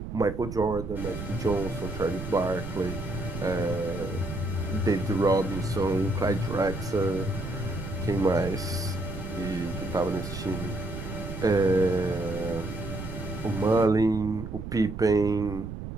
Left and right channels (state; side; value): noise; right; rumble, 8 dB below the sound